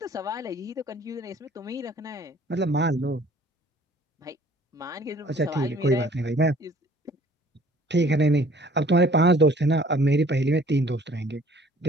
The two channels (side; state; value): both; normal; correlation 0.54